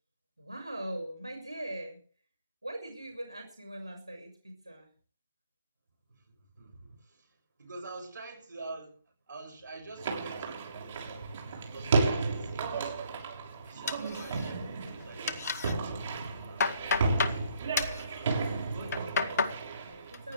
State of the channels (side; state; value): both; inverted; correlation -0.67